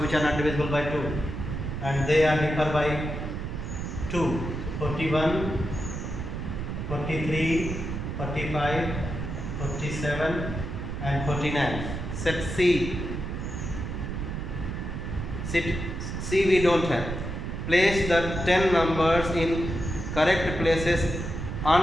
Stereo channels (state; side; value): noise; right; rumble, 5 dB below the sound